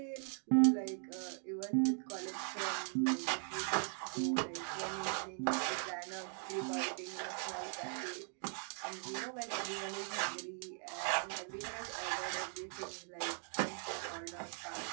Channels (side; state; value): left; silent; 51 dB below the other